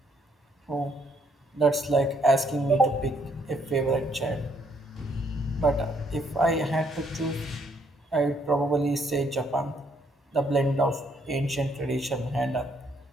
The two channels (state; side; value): normal; both; correlation 0.70